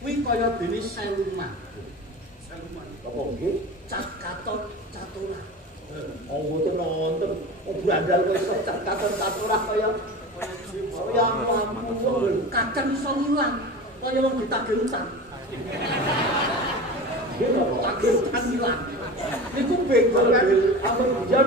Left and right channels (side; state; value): both; normal; correlation 0.32